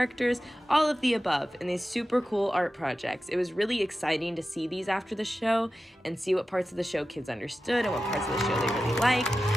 all of the above in these super cool art projects. It was really exciting to see these after the show and see what parts of the show kids understood and what parts of the show they really liked,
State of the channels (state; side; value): normal; both; correlation 0.93